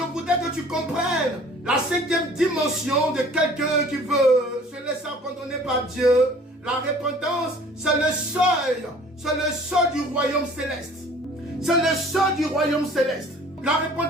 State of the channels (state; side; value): normal; both; correlation 0.51